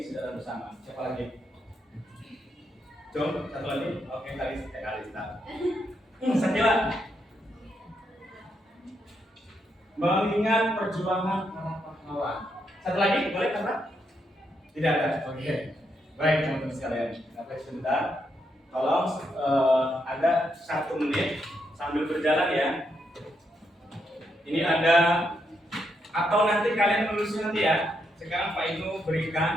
secara bersama. Siapa lagi? Jom, satu lagi. Oke, Kalista. Sakila. Mengingat perjuangan para pahlawan. Satu lagi, boleh kata? Tidak ada. Oke. Baik, teman-teman sekalian. Sampai sebentar. Tolong ada 1 menit sambil berjalan ya. Ini ada, atau nanti kalian menulisnya nanti ya. Sekarang Pak Inu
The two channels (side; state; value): both; normal; correlation 0.80